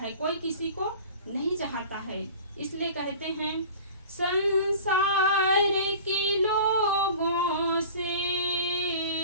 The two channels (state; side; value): inverted; both; correlation -0.41